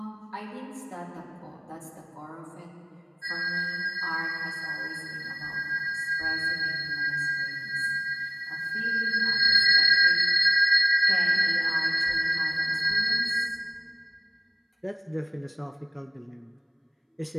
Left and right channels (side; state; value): both; identical; correlation 1.00